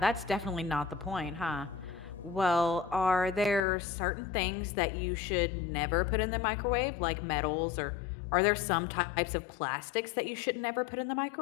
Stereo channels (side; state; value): right; drops out; at 3.6 s